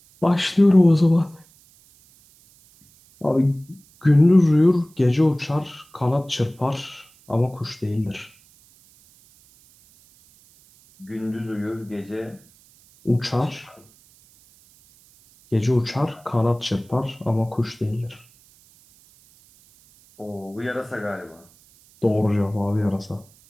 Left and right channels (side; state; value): right; noise; hiss, 29 dB below the sound